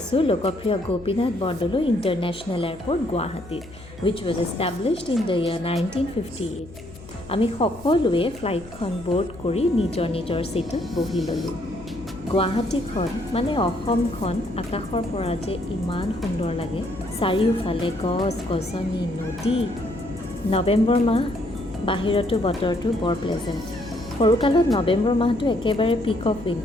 লোকপ্ৰিয় গোপীনাথ বৰদলৈ ইণ্টাৰনেশ্যনেল এয়াৰপৰ্ট গুৱাহাটীত, which was established in the year 1958. আমি সকলোৱে ফ্লাইটখন ব'ৰ্ড কৰি নিজৰ নিজৰ ছিটত বহি ল'লোঁ। গুৱাহাটীখন মানে অসমখন আকাশৰ পৰা যে ইমান সুন্দৰ লাগে। চাৰিওফালে গছ গছনি নদী। নৱেম্বৰ মাহ, বাহিৰতো বতৰটো বৰ প্লেজেণ্ট। সৰুকালত নৱেম্বৰ মাহটো একেবাৰে পিক অফ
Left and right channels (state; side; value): noise; left; hum, 18 dB below the sound